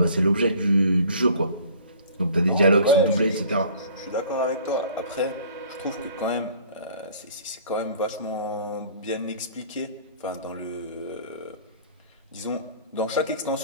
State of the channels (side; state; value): both; inverted; correlation -0.50